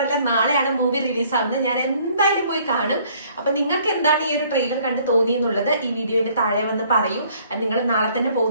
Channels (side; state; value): both; inverted; correlation -0.60